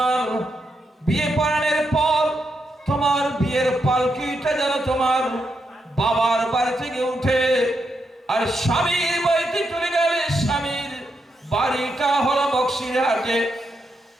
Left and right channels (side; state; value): both; normal; correlation 0.83